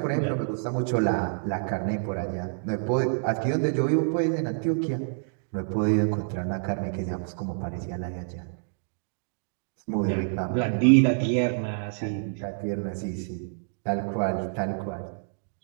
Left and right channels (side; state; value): left; silent; digital silence